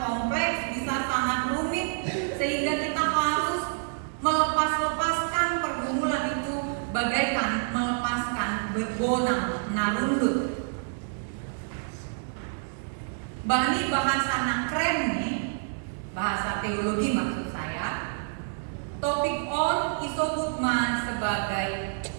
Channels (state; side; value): silent; left; digital silence